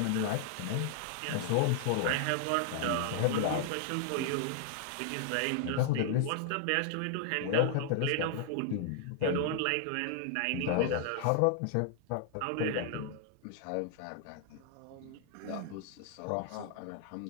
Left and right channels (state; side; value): different; both; correlation 0.00